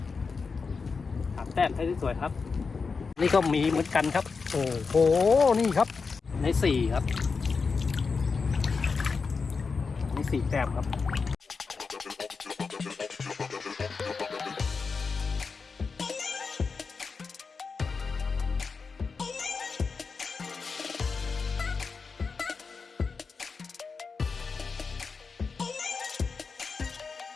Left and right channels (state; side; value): quieter; right; 4.9 dB